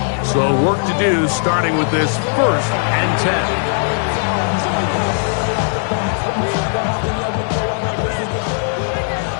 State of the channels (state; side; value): silent; right; 59 dB below the other